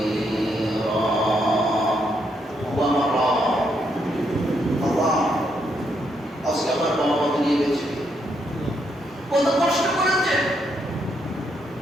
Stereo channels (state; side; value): normal; both; correlation 0.77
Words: আল্লাহ আজকে আমার বাবা মাকে নিয়ে গেছে, কত কষ্ট করেছে,